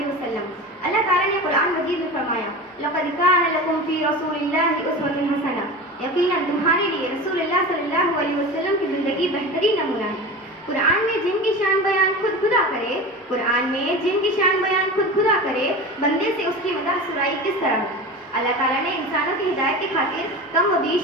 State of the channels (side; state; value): both; normal; correlation 0.30